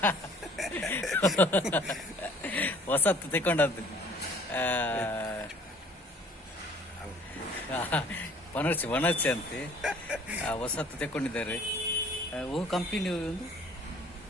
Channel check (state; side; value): normal; both; correlation 0.54